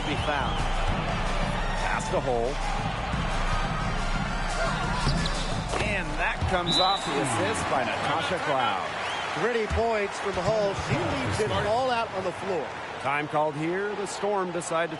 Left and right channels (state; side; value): identical; both; correlation 1.00